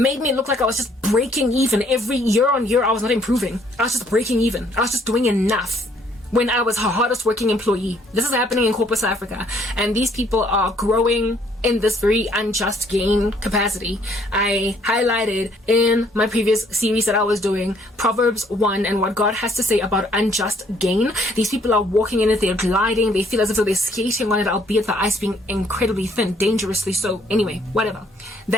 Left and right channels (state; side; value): normal; both; correlation 0.65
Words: me look like I was just breaking even. Every year on year, I was not improving. I was just breaking even. I was just doing enough when I was her hardest working employee. This is happening in corporate South Africa, and these people are growing in this very unjust gain capacity. I highlighted in my previous series that I was doing Proverbs 1 and what God has to say about unjust gain. These people are walking in it, they're gliding, they feel as if they're skating on it, albeit the ice being incredibly thin, dangerously so. Anyway, whatever.